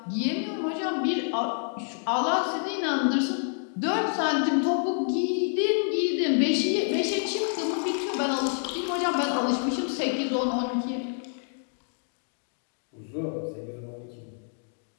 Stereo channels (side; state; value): right; silent; digital silence